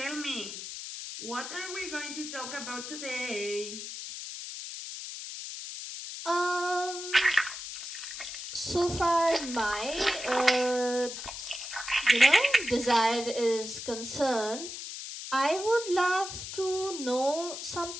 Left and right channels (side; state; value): left; noise; hiss, 8 dB below the sound